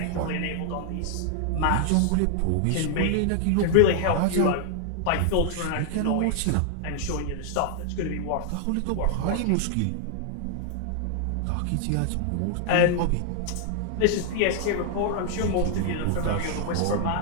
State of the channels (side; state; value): both; different; correlation -0.01